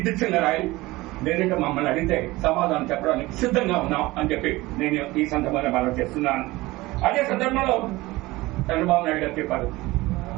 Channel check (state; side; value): quieter; left; 19.9 dB